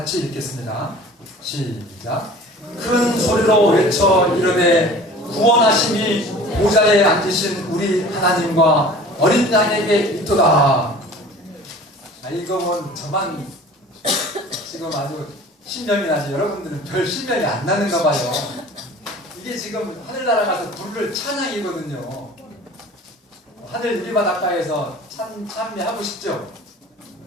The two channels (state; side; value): normal; both; correlation 0.44